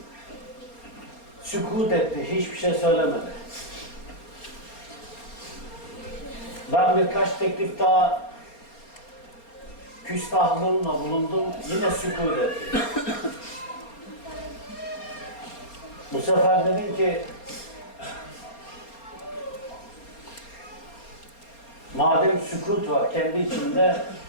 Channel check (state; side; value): late; right; 4.3 ms